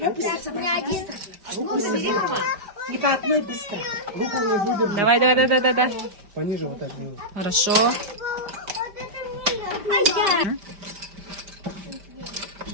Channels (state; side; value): late; left; 5.1 ms